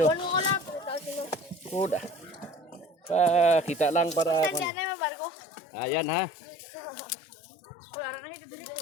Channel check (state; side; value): drops out; right; at 4.7 s